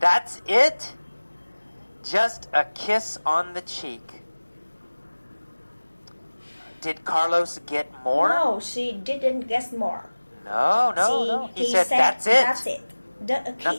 it? Just a kiss on the cheek." Did Carlos get more? No, she didn't get more. No. He said, "That's it." That's it. A kiss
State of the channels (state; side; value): inverted; both; correlation -1.00